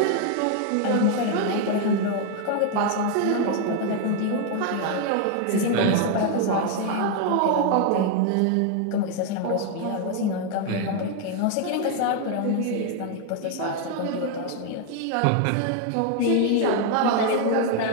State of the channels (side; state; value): both; different; correlation 0.01